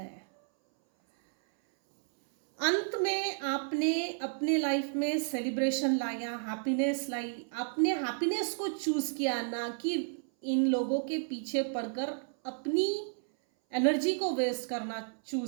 अंत में आपने अपने लाइफ में सेलिब्रेशन लाया, हैप्पीनेस लाई। आपने हैप्पीनेस को चूज किया, ना कि इन लोगों के पीछे पड़कर अपनी एनर्जी को वेस्ट करना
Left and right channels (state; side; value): silent; left; 57 dB below the other